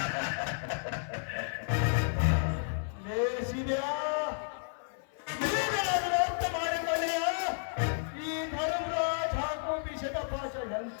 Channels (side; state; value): right; silent; 56 dB below the other